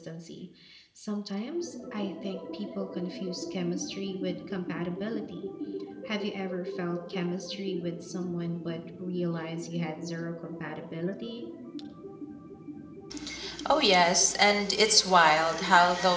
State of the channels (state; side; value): identical; both; correlation 1.00